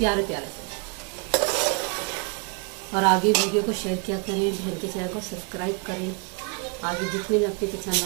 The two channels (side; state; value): left; quieter; 34.8 dB